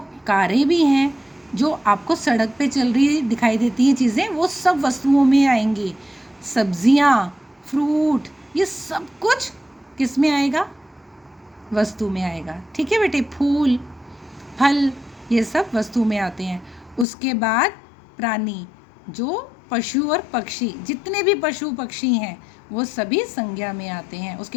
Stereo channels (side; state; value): right; drops out; at 17.1 s